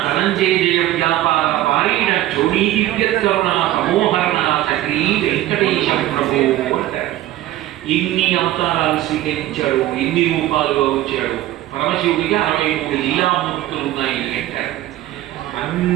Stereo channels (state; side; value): quieter; left; 14.6 dB